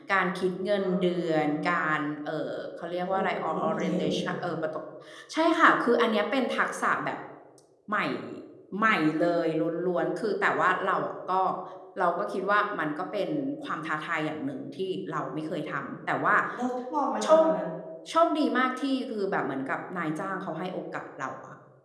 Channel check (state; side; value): identical; both; correlation 1.00